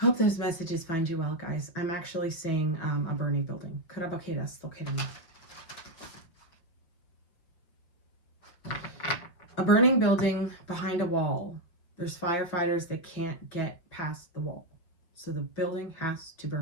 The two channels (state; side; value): late; right; 6.0 ms